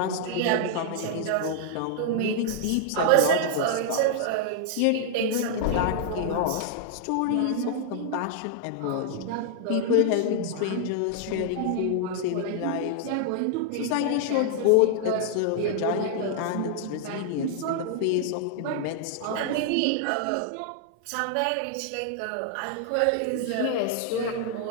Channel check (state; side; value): different; both; correlation 0.00